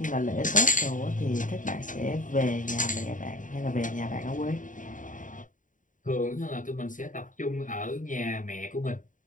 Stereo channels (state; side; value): late; right; 0.38 ms